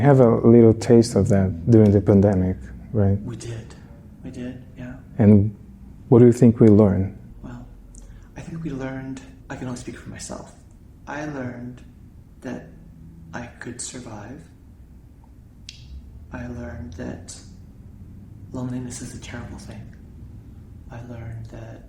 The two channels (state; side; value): identical; both; correlation 1.00